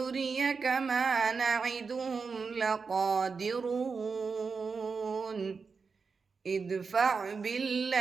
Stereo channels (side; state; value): left; quieter; 5.0 dB